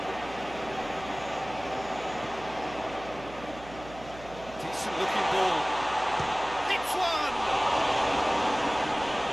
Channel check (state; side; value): noise; right; hum, 17 dB below the sound